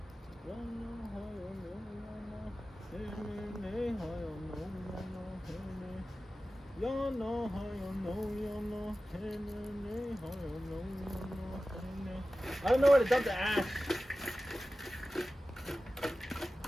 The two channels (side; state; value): both; normal; correlation 0.95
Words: don't know where to dump the ash.